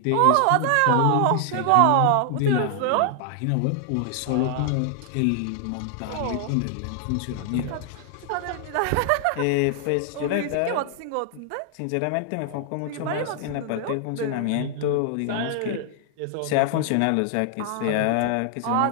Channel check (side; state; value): both; different; correlation 0.00